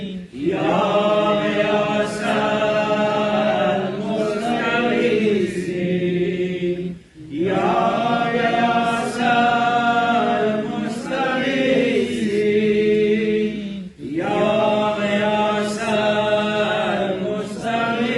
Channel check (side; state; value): both; identical; correlation 1.00